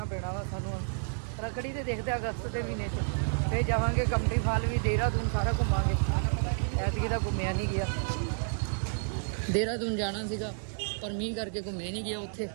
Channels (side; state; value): left; silent; digital silence